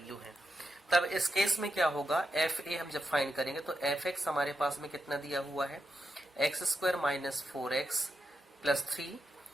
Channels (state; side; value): normal; both; correlation 0.86